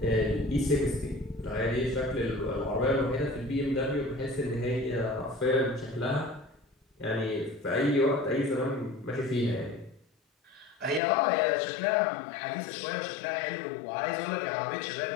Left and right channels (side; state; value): right; drops out; at 11.0 s